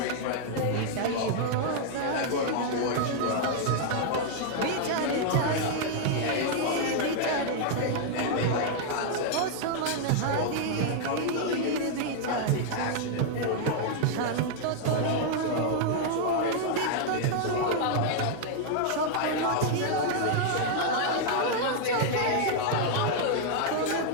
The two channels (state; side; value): different; both; correlation -0.01